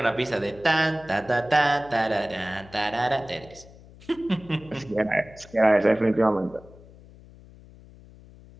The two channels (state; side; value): noise; left; hum, 22 dB below the sound